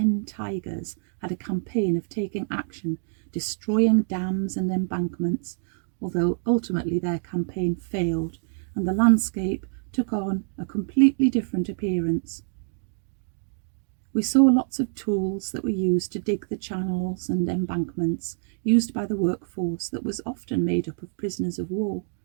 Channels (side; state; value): left; silent; digital silence